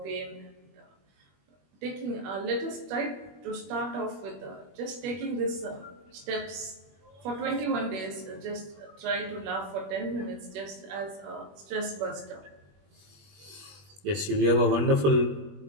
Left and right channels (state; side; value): late; left; 21 ms